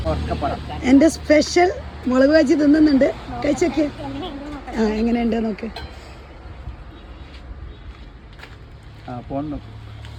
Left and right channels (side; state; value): both; identical; correlation 1.00